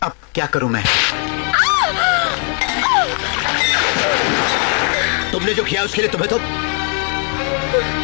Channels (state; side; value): quieter; right; 39.1 dB